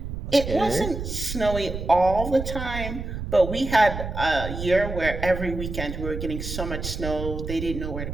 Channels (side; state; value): right; noise; rumble, 6 dB below the sound